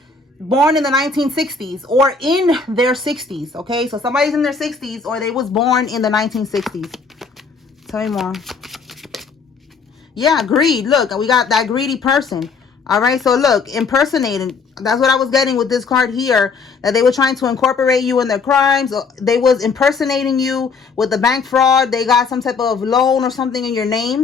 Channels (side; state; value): right; quieter; 4.9 dB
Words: born in the 1960s or in their 60s. Okay, so somebody's in their 60s or they was born in the 1960s. Tell me more. Yeah, greed. Look, we got that greedy person. All right, so look, impersonating. That's what I was getting with this card here, that they were trying to incorporate you in their crimes. They was impersonating you with the bank fraud. They got some type of loan or something in your